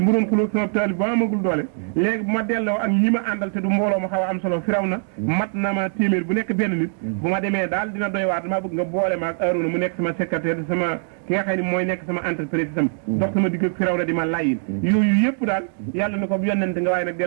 doon xulóog sama taal bi ba amagul doole léegi bu ma delloo ak ñi ma àndal te du mbooloo ma xaw a am solo Firawna mat na ma téeméer bu nekk benn nit bu ma demee daal dina doy waat damaa bëgg nga boole ma ak Aaroona mu nekk sama secrétaire sama ki nga xam ne mooy nekk sama entreprise itam dox sama digg ak Firawna di ma layin yooyu yëpp daal yàlla na ko yonent nga waaye nag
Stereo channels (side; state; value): left; silent; 56 dB below the other